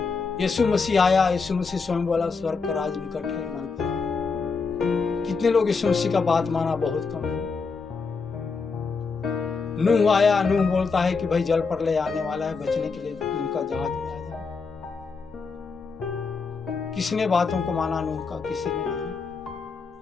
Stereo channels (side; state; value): right; quieter; 4.8 dB